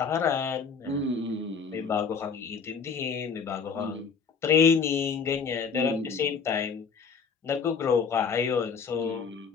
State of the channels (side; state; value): right; quieter; 5.8 dB